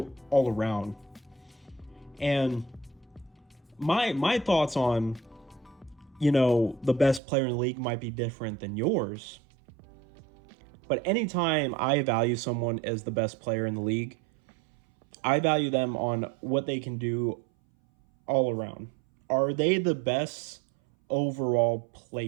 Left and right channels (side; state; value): left; drops out; at 7.2 s